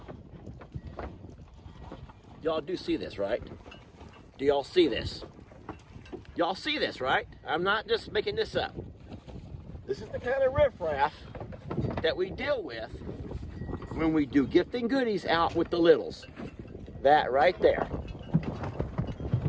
Y'all do see this, right? Do y'all see this? Y'all see this, right? I'm not just making this up. This is the kind of riffraff that we deal with when we do gifting goodies out with the littles. That right there.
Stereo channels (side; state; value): both; identical; correlation 1.00